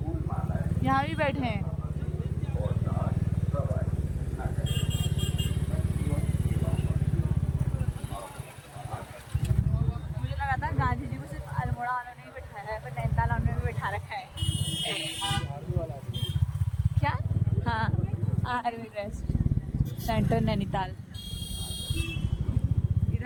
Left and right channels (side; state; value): both; identical; correlation 1.00